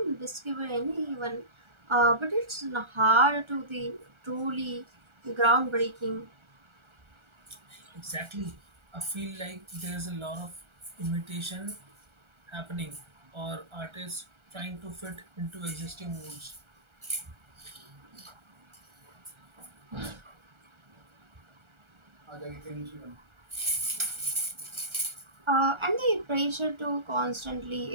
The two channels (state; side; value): late; left; 1.3 ms